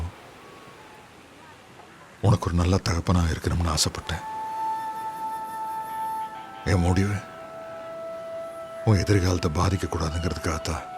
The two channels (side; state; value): both; identical; correlation 1.00